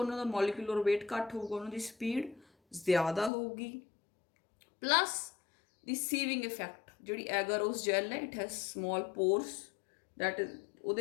ਉਹਨਾਂ ਦਾ ਮੋਲੀਕੂਲਰ ਵੇਟ ਘੱਟ ਹੋਊਗਾ, ਉਹਨਾਂ ਦੀ ਸਪੀਡ ਜ਼ਿਆਦਾ ਹੋਊਗੀ। ਪਲੱਸ ਦੀ ਸੀਵਿੰਗ ਇਫੈਕਟ, ਜਿਹੜੀ ਐਗਾਰੋਸ ਜੈਲ ਹੈ it has small pores that is,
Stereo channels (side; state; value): right; drops out; at 3.3 s